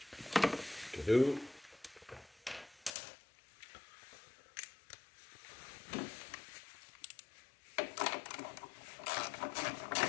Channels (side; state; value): right; drops out; at 2.9 s